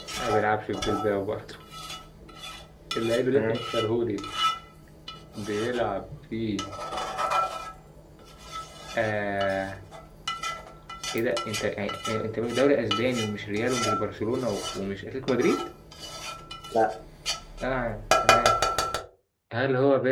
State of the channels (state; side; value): identical; both; correlation 1.00